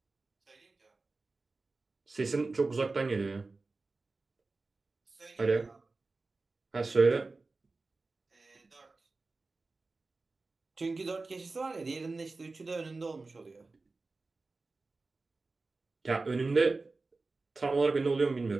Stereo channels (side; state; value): left; quieter; 3.6 dB